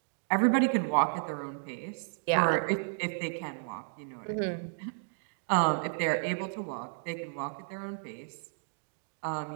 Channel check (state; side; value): silent; left; digital silence